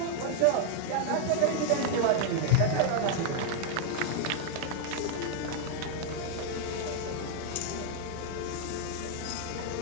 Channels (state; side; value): different; both; correlation 0.00